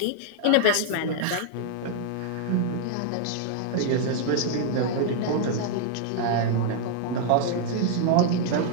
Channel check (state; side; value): different; both; correlation 0.00